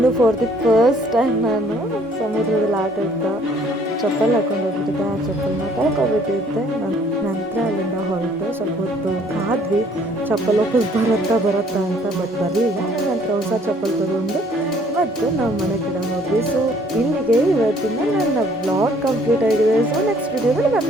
ಫಾರ್ ದಿ ಫಸ್ಟ್ ಟೈಮ್ ನಾನು ಸಮುದ್ರದಲ್ಲಿ ಆಟ ಆಡ್ತಾ ಚಪ್ಪಲ್ ಹಾಕೊಂಡು ಹೋಗಿದ್ದೆ. ಆ ಚಪ್ಪಲ್ನ ಕಳ್ಕೊಬಿಟ್ಟಿದ್ದೆ. ನಂತರ ಅಲ್ಲಿಂದ ಹೊರಟು ಸ್ವಲ್ಪ ಹೊತ್ತು ಕಾದ್ವಿ ಚಪ್ಪಲ್ ವಾಪಸ್ ಬರುತ್ತಾ ಅಂತ, ಬಟ್ ಬರಲಿಲ್ಲ. ನಂತರ ಹೊಸ ಚಪ್ಪಲ್ ತಗೊಂಡು ಮತ್ತು ನಾವು ಮನೆ ಕಡೆ ಹೋದ್ವಿ. ಸೊ ಇಲ್ಲಿಗೆ ಇವತ್ತಿನ ನನ್ನ ಬ್ಲಾಗ್ ಕಂಪ್ಲೀಟ್ ಆಗಿದೆ. ಸೊ ನೆಕ್ಸ್ಟ್ ವಿಡಿಯೋದಲ್ಲಿ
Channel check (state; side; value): normal; both; correlation 0.60